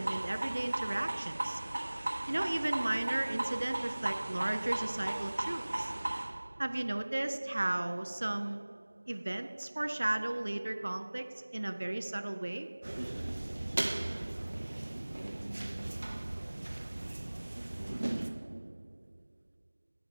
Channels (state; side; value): inverted; both; correlation -1.00